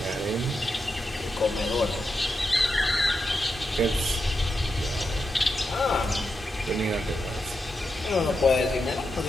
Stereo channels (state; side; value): normal; both; correlation 0.86